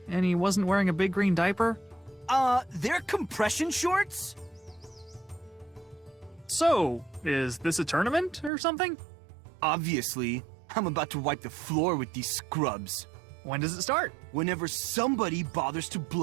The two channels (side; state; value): left; drops out; at 8.5 s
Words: and he wasn't wearing a big green diaper. They're compression shorts? So, is this a tournament or something? Obviously. I'm about to wipe the floor with these scrubs. When does it start? Whenever somebody bothers to